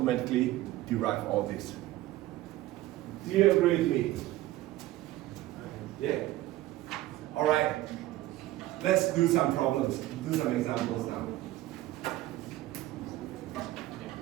derive all this. Do you agree with me? Yeah? Alright, let's do some problems, do some examples now.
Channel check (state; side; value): quieter; left; 16.0 dB